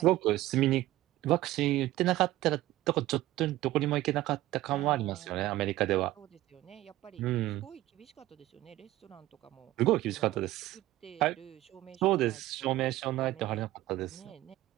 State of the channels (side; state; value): left; quieter; 16.0 dB